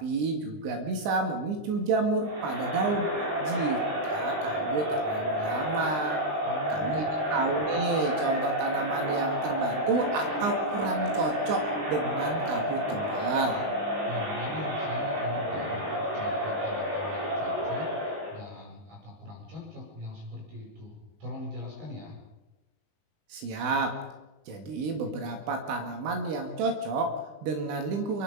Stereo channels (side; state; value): left; late; 20 ms